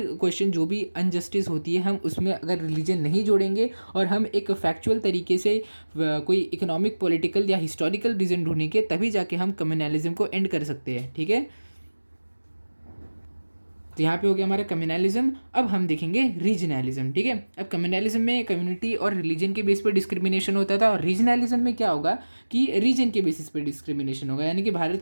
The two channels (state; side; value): inverted; both; correlation -1.00